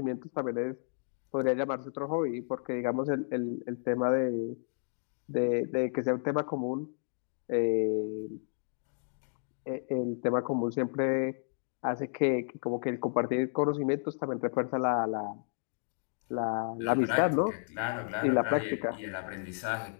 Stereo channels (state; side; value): silent; right; digital silence